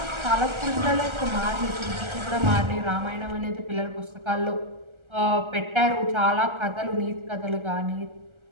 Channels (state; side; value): late; left; 1.3 ms